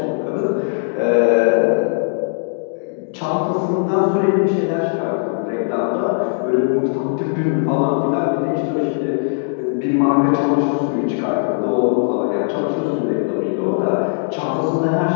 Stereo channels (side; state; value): right; silent; digital silence